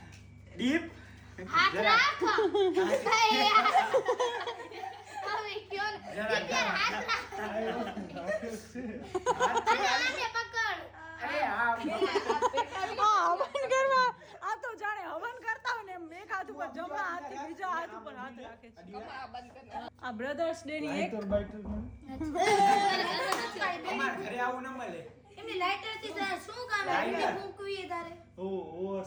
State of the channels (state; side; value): identical; both; correlation 1.00